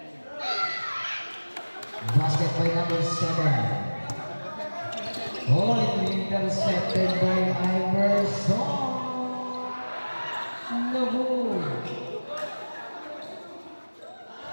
Basket by number 7. Oh, intercepted by Iverson. No good.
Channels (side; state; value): both; inverted; correlation -1.00